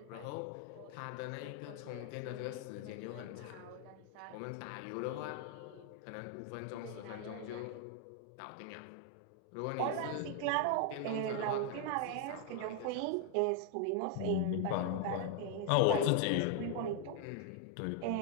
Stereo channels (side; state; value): both; different; correlation 0.00